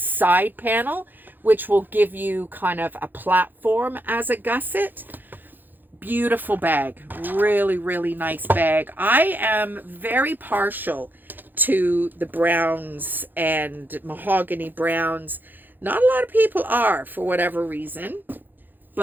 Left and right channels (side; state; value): left; late; 0.089 ms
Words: panel, which will give you kind of a platform as a gusset. Beautiful bag. Really, really nice bag. I am very partial to the browns and mahogany browns. Not a lot of people are, for whatever reason.